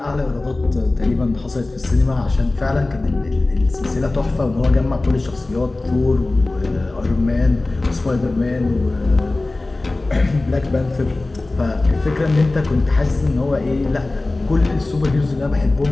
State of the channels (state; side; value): quieter; right; 3.0 dB